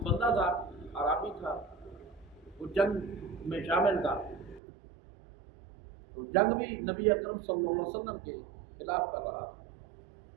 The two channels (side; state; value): left; drops out; at 4.6 s